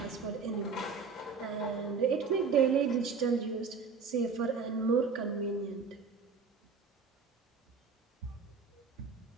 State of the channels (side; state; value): left; quieter; 5.2 dB